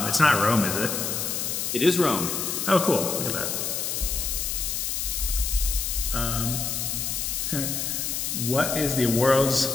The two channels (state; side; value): noise; left; hiss, 1 dB below the sound